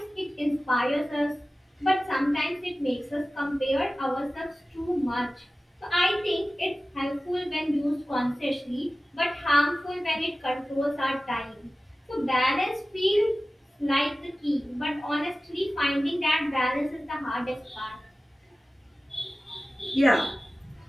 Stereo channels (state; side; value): normal; both; correlation 0.96